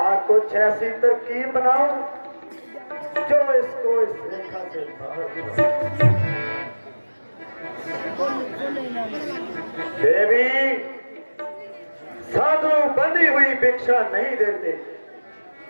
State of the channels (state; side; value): inverted; both; correlation -1.00